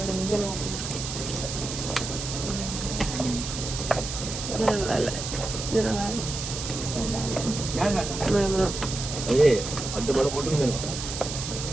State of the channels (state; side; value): noise; right; hiss, 6 dB below the sound